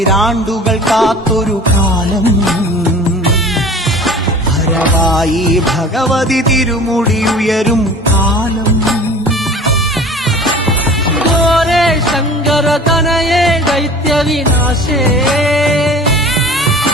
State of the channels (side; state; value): both; normal; correlation 0.43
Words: കാത്തൊരു കാലം ഭരവായി ഭഗവതി തിരുമുടി ഉയരും കാലം ഗോരേ ശങ്കര തനയേ ദൈത്യവിനാശേ